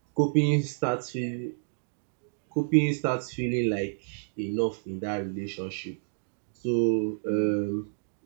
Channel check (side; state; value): left; silent; digital silence